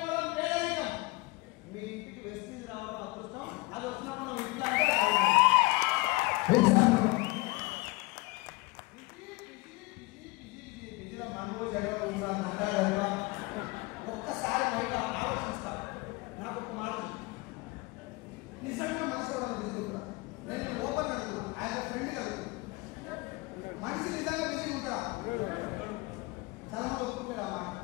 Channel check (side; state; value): right; quieter; 23.3 dB